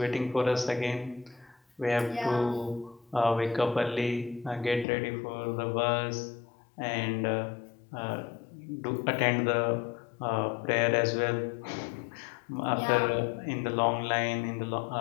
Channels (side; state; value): right; drops out; at 4.9 s